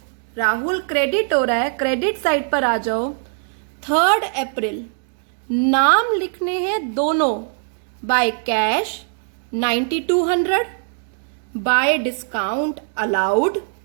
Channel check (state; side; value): silent; left; 64 dB below the other